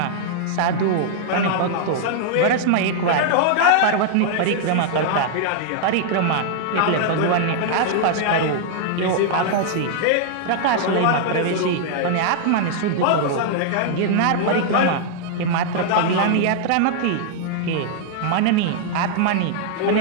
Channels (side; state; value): both; different; correlation -0.01